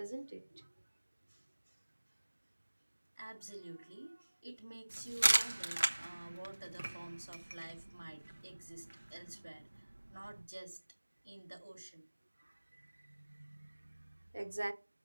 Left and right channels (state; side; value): inverted; both; correlation -1.00